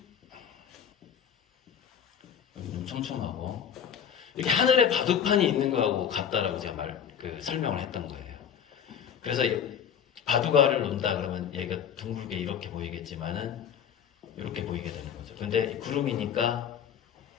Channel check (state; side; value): quieter; right; 8.4 dB